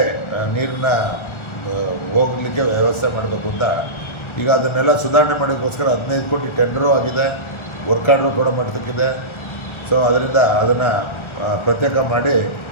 ನೀರನ್ನ ಹೋಗಲಿಕ್ಕೆ ವ್ಯವಸ್ಥೆ ಮಾಡಬೇಕು ಅಂತ ಈಗ ಅದನ್ನೆಲ್ಲ ಸುಧಾರಣೆ ಮಾಡೋಕ್ಕೋಸ್ಕರ 15 ಕೋಟಿ ಟೆಂಡರು ಆಗಿದೆ, ವರ್ಕ್ ಆರ್ಡ್ರು ಕೂಡ ಮಾಡತಕ್ಕಿದೆ. ಸೊ ಅದರಿಂದ ಅದನ್ನು ಪ್ರತ್ಯೇಕ ಮಾಡಿ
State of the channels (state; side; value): late; right; 1.4 ms